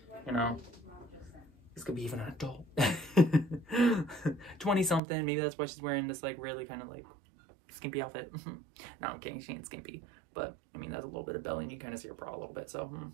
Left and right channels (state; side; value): drops out; left; at 5.0 s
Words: you know, this could be even an adult. 20-something, maybe that's why she's wearing this, like, really kind of, like, skimpy outfit. No, I'm kidding, she ain't skimpy. But, I mean, there's a little bit of belly, and you kind of see her bra a little bit, so,